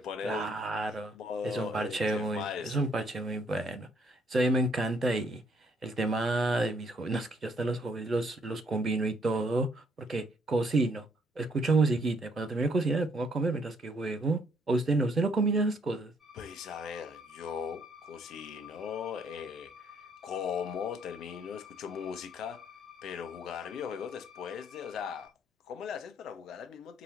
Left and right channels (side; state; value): both; normal; correlation 0.68